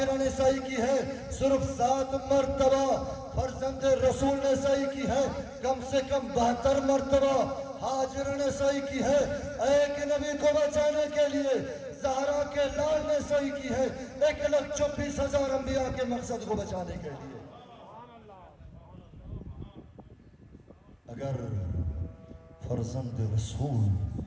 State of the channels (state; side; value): identical; both; correlation 1.00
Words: نے سعی کی ہے۔ صرف 7 مرتبہ فرزند رسول نے سعی کی ہے، کم سے کم 72 مرتبہ ہاجرہ نے سعی کی ہے ایک نبی کو بچانے کے لیے۔ زہرا کے لال نے سعی کی ہے 1,24,000 انبیاء کے مقصد کو بچانے کے لیے۔ اگر فرزند رسول